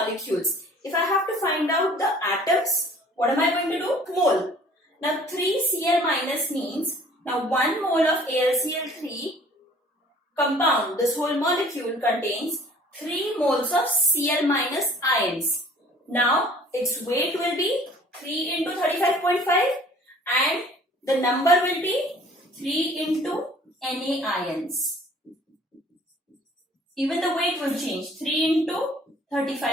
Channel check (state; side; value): normal; both; correlation 0.52